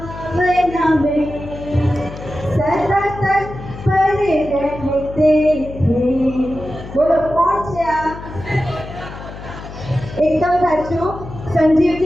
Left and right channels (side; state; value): left; noise; hum, 12 dB below the sound